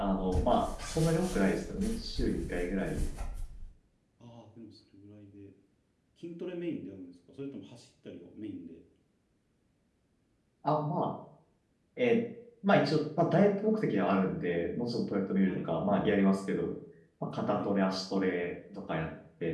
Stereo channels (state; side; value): identical; both; correlation 1.00